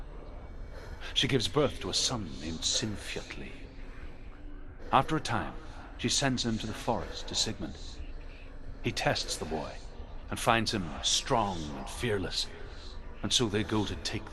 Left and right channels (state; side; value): identical; both; correlation 1.00